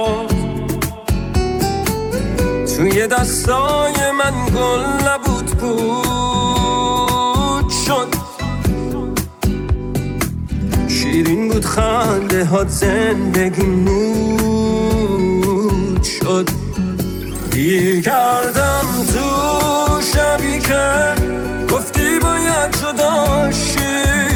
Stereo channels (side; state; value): both; identical; correlation 1.00